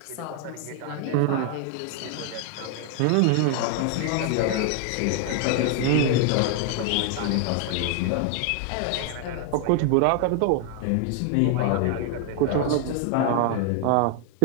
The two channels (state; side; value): different; both; correlation 0.00